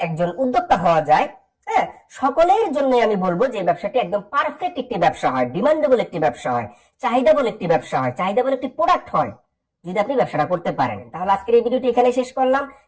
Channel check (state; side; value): identical; both; correlation 1.00